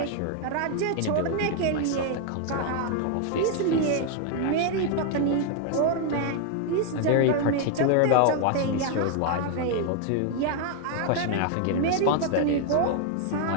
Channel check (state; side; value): different; both; correlation 0.00